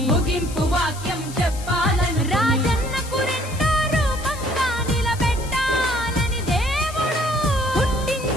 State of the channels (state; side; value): noise; left; hiss, 15 dB below the sound